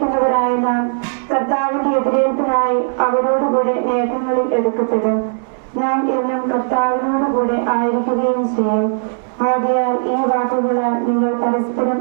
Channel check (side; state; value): left; silent; digital silence